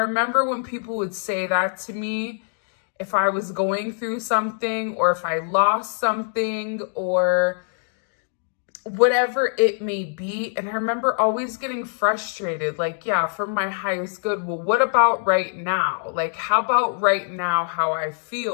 when people would say that to me, if I was going through something or if I lost something or whatever it may be. And I remember always getting frustrated, like, yeah, for my highest good. Well, what about right now? Like, how about right now, how I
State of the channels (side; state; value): right; silent; digital silence